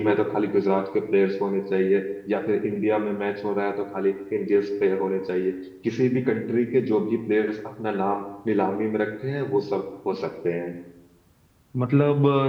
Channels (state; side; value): identical; both; correlation 1.00